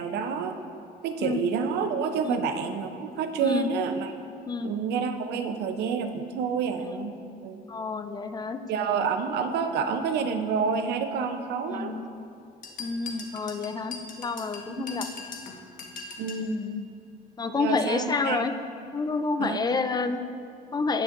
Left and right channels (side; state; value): both; normal; correlation 0.30